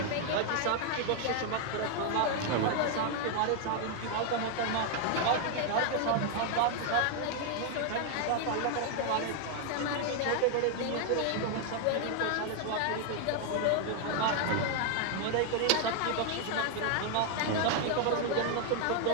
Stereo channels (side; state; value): both; different; correlation 0.00